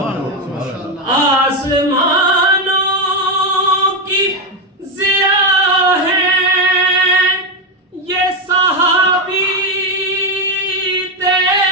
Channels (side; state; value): both; normal; correlation 0.09